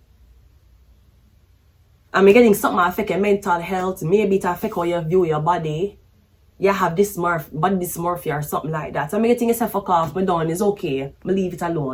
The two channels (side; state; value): both; identical; correlation 1.00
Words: I'm getting something affect your mental health, maybe it affect how you view your body. You have body dysmorphia or something like that. So I'm getting yourself fuck off, but done, it's okay. I leave it